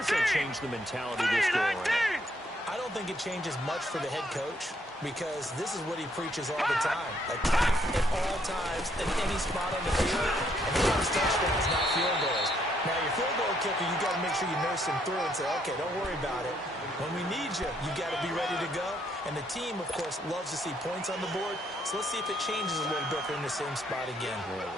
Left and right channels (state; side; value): normal; both; correlation 0.71